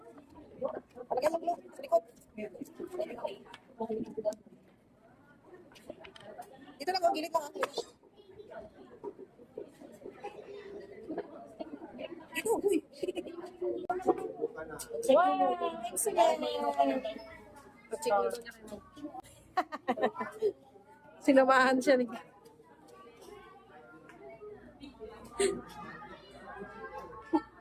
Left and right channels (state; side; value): identical; both; correlation 1.00